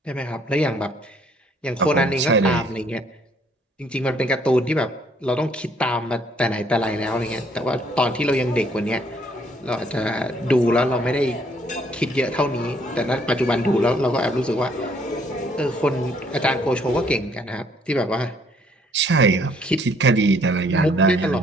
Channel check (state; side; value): normal; both; correlation 0.64